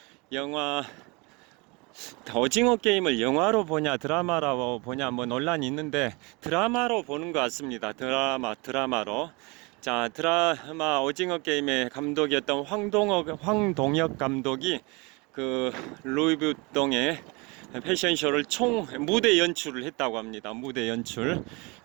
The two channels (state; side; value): quieter; left; 27.6 dB